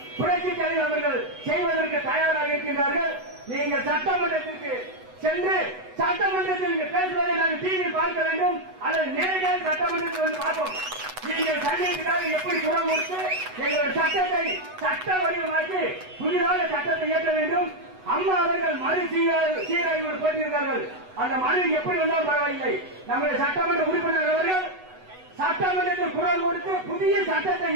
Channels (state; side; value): late; left; 8.0 ms